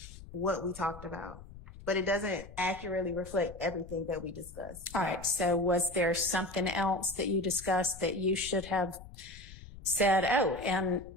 what we talked about, but it doesn't accurately reflect everything that we discussed. All right. So was there something else that you discussed that you should have said, oh, and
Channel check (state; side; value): noise; left; rumble, 16 dB below the sound